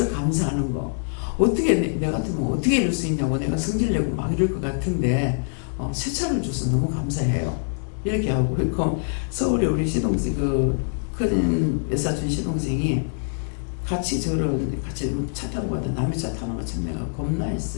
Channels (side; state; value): right; silent; digital silence